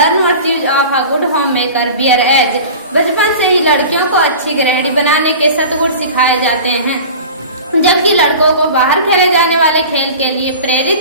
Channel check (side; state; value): both; inverted; correlation -0.37